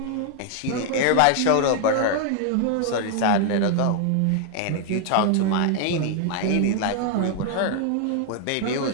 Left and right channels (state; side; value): different; both; correlation 0.00